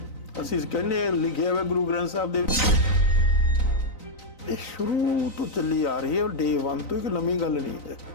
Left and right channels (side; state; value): right; late; 3.9 ms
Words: ਅਸੀਂ ਕਹਿੰਦੇ ਲਿਖਿਆ ਹੋਇਆ ਗੁਰੂ ਗ੍ਰੰਥ ਸਾਹਿਬ ਦੇ ਵਿੱਚ। ਇਹ ਸ਼ੁਰੂ ਤੋਂ ਚੱਲੀ ਆ ਰਹੀ ਹੈ, ਡੇ 1 ਤੋਂ। ਇੱਕ ਨਵੀਂ ਗੱਲ ਨਹੀਂ ਹੈ,